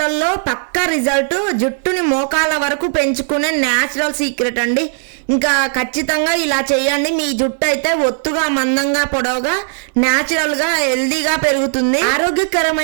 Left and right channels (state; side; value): silent; left; 69 dB below the other